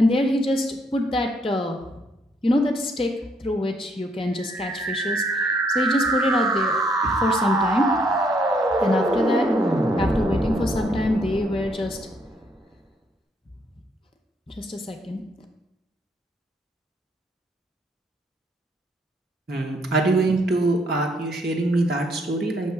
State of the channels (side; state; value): both; normal; correlation 0.70